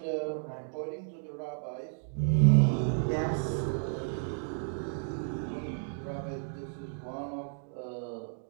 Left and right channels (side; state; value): left; silent; digital silence